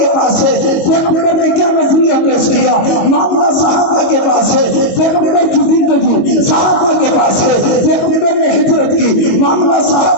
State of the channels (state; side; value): late; right; 21 ms